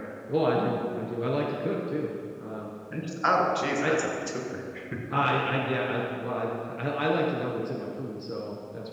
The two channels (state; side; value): identical; both; correlation 1.00